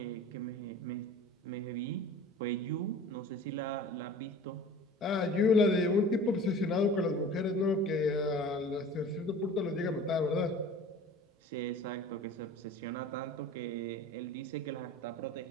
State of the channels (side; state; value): both; normal; correlation 0.42